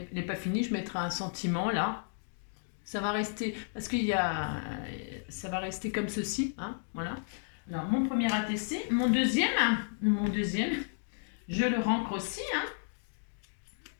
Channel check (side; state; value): right; silent; digital silence